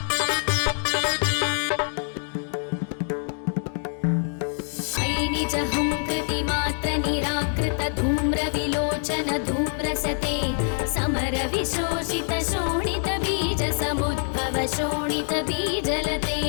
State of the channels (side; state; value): right; silent; 62 dB below the other